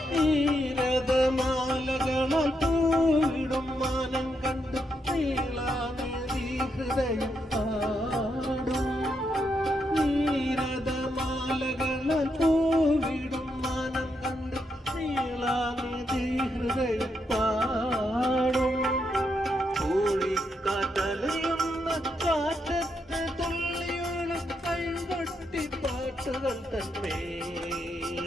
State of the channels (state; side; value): normal; both; correlation 0.81